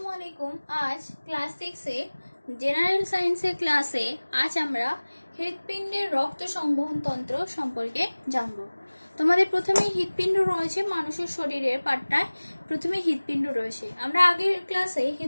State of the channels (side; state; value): both; inverted; correlation -1.00